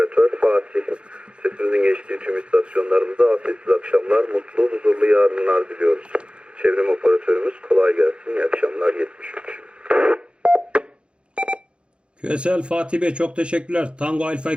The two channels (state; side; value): late; left; 0.056 ms